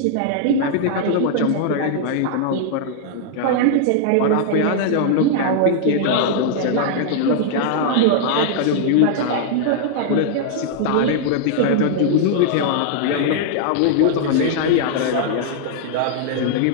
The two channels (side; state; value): both; different; correlation -0.01